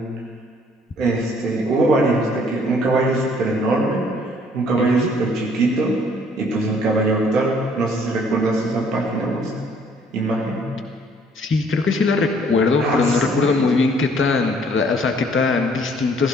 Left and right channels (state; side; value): normal; both; correlation 0.61